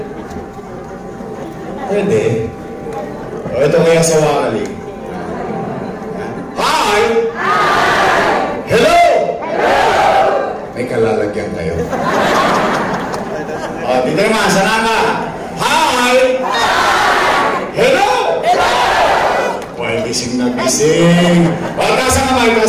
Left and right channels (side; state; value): both; identical; correlation 1.00